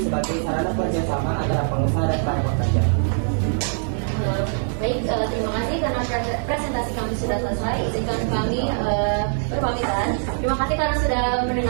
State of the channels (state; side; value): silent; left; digital silence